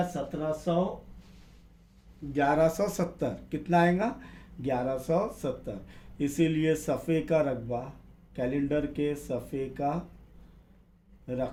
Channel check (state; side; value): identical; both; correlation 1.00